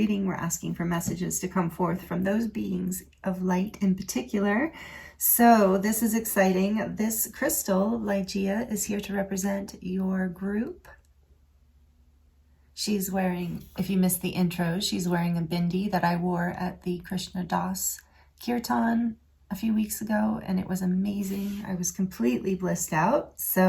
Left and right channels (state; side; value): identical; both; correlation 1.00